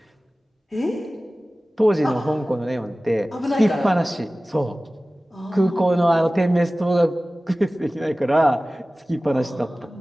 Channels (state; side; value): normal; both; correlation 0.97